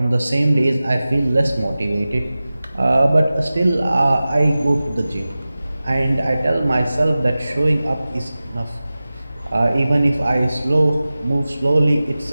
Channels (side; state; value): both; inverted; correlation -0.96